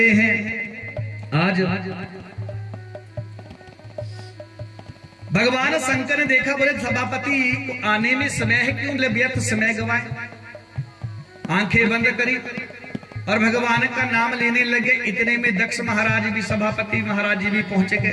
हैं आज भगवान शंकर ने देखा, बोले सभापति को आने में समय है, क्यों व्यर्थ समय गवाए। आंखें बंद करी और भगवान का नाम लेने लगे। इतने में दक्ष महाराज भी, सभापति महाराज जी भी पहुंचे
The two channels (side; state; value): both; identical; correlation 1.00